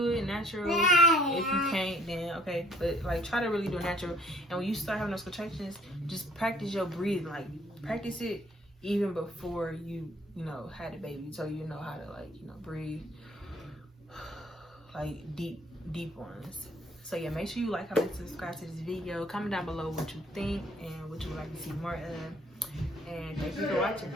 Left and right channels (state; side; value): normal; both; correlation 0.58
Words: it natural. If you can't, then okay, but like try to really do it natural. And when you start having those contractions, just practice your breathing. Like practice it even before you had a baby, so you know how to, like, breathe like deep ones. So yeah, make sure you like, comment, subscribe to this video. Comment down below what you think and what you would like to see more of. And thank you for